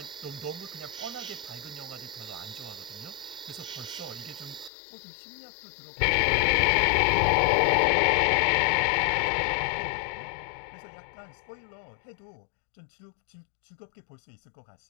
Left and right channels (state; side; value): drops out; right; at 4.7 s